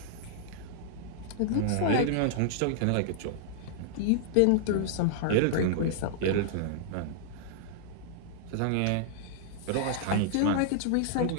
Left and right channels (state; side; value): different; both; correlation -0.01